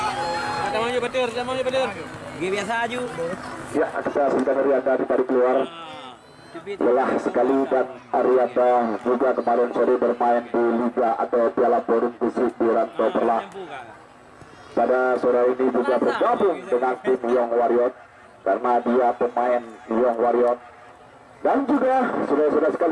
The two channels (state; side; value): identical; both; correlation 1.00